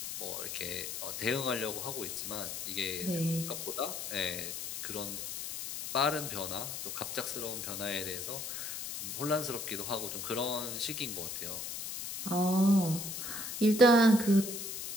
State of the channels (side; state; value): left; noise; hiss, 6 dB below the sound